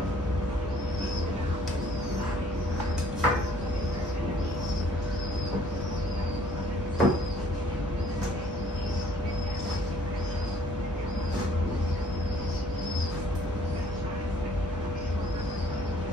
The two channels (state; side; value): normal; both; correlation 0.59